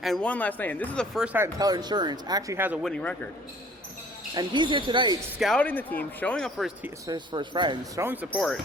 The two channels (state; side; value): normal; both; correlation 0.53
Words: and won last night. And this is the first time Teller Insurance actually has a winning record. And he's here tonight scouting the team, showing up for his friends, showing support.